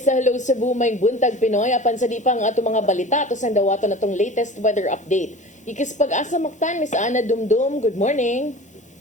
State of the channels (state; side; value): normal; both; correlation 0.38